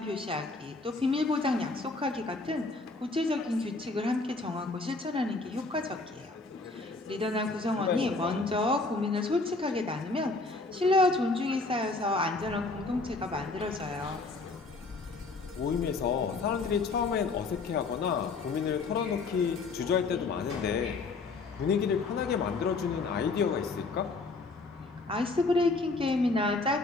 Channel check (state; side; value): quieter; right; 3.7 dB